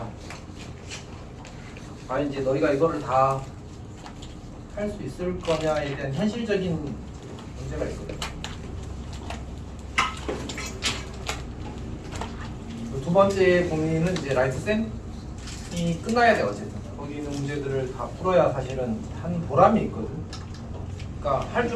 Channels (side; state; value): both; identical; correlation 1.00